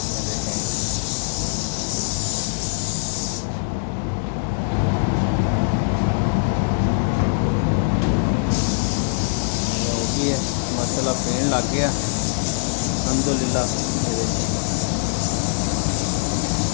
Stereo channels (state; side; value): silent; right; 64 dB below the other